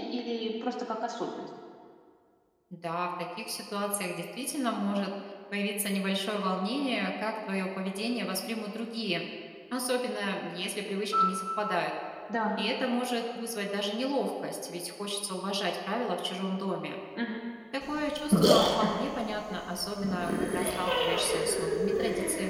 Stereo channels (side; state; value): both; identical; correlation 1.00